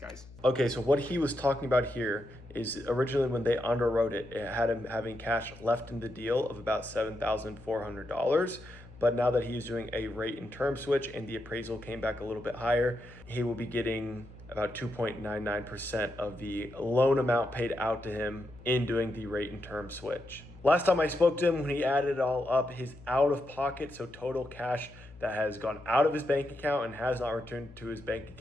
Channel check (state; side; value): noise; left; hum, 20 dB below the sound